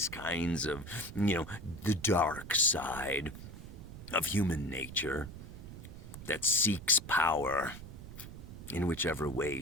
kinds of, the dark side of human nature that seeks power in whichever way,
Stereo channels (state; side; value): noise; right; rumble, 12 dB below the sound